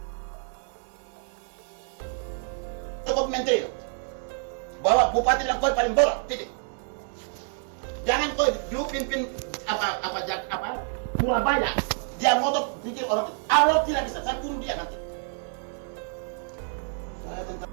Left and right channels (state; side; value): silent; left; 56 dB below the other